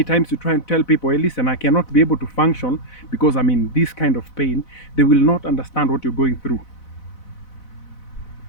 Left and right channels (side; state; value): right; late; 4.0 ms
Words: times you try and tell people, hey, listen, I cannot be able to function because I'm in this kind of pain, they will not understand what you're going through.